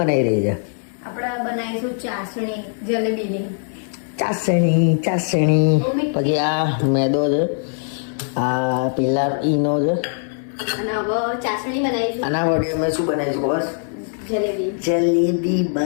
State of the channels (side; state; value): right; silent; 64 dB below the other